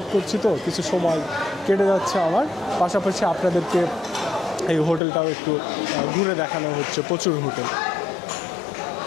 করছি, তো কিছু সময় কেটে যাচ্ছে আমার। পাশাপাশি আপনাদেরকে এই হোটেলটাও একটু ঘুরে দেখানো হচ্ছে, প্রচুর হোটেল।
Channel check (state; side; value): drops out; right; at 5.0 s